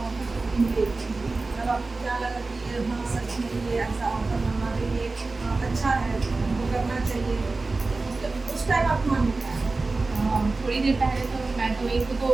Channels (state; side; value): quieter; left; 3.6 dB